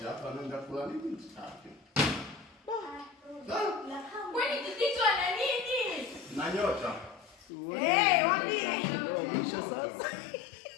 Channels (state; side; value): drops out; right; at 7.5 s